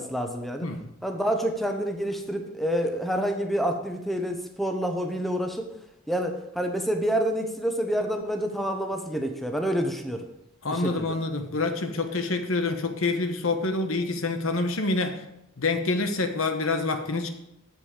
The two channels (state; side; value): normal; both; correlation 0.49